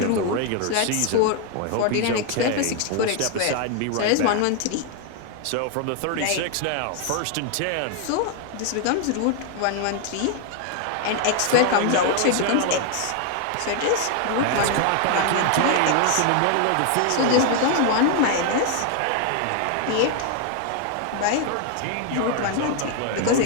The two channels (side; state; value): both; different; correlation 0.00